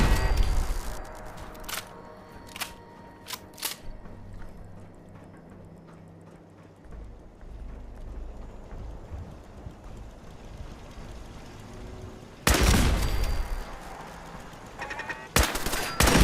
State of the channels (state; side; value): identical; both; correlation 1.00